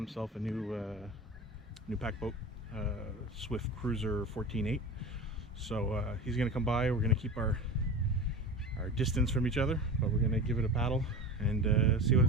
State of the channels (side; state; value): both; normal; correlation 0.31